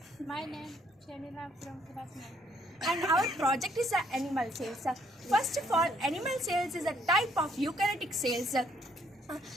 My name Shamila from class 9. And our project is animal cells. First of all, animal cells is a type of eukaryotic cells.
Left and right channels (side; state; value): both; normal; correlation 0.68